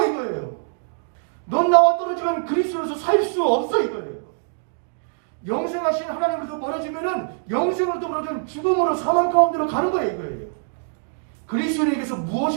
이거예요. 넌 나와 떨어지면 그리스도로서 살 수 없어, 이거예요. 영생하신 하나님으로서 멀어지면은 영생으로부터 멀어지면 죽음으로 사망 가운데로 가는 거예요, 이거예요. 그리스도인에게서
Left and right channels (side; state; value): left; silent; digital silence